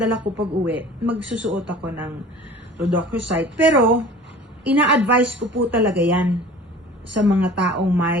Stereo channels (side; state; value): both; normal; correlation 0.43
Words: ko pag uwi, magsusuot ako ng rhodochrosite. Pero, ina-advise ko po talaga yan sa mga taong